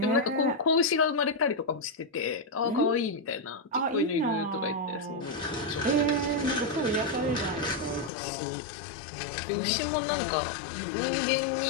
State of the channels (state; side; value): drops out; right; at 8.1 s